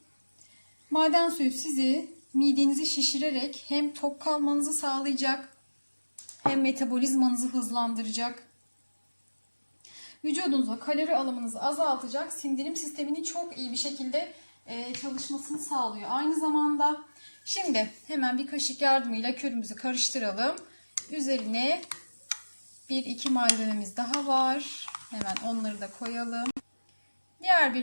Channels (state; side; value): inverted; both; correlation -1.00